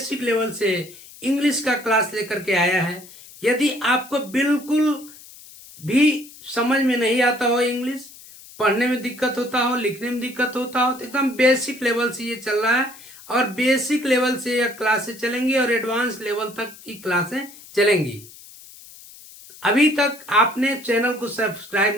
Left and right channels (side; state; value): left; noise; hiss, 19 dB below the sound